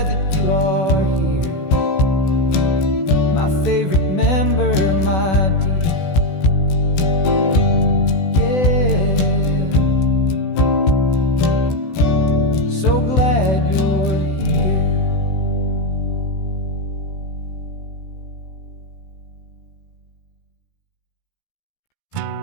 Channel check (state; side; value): late; right; 16 ms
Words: that you are here, my favorite member, my dear. Yeah, so glad you're here.